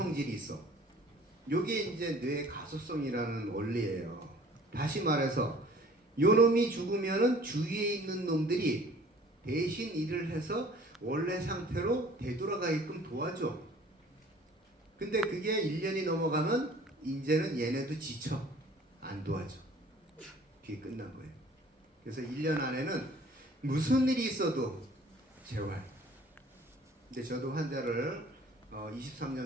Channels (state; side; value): normal; both; correlation 0.51